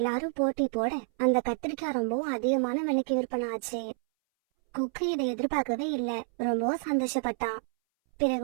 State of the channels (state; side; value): silent; left; 59 dB below the other